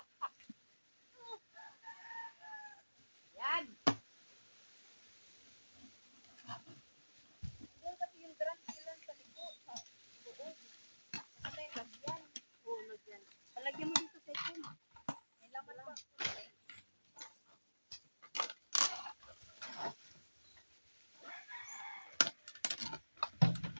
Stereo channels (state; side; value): inverted; both; correlation -1.00